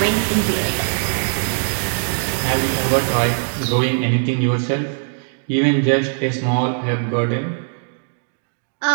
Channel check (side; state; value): left; silent; digital silence